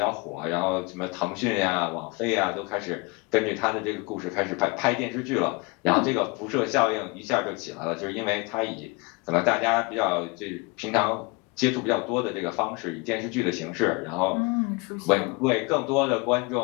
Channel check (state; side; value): quieter; right; 27.6 dB